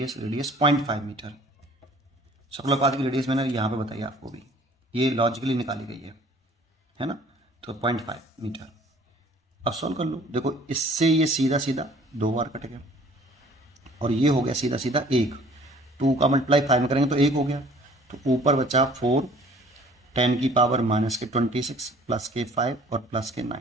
0.5 मीटर। सर्कुलर पाथ की रेडियस मैंने यहाँ पे बताई आपको भी, ये लॉजिकली निकाली गई है ना, तो 0.5 मीटर। अब सॉल्व कर लो, देखो इससे ये सीधा सीधा 2 बार कट गया, और ये हो गया सीधा सीधा 1, 2 का मल्टीप्लाई 5 में करेंगे तो 1 हो गया, तो ऊपर बचा 4 10⁻⁻26 प्लस के 5 और प्लस के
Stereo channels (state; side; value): normal; both; correlation 0.53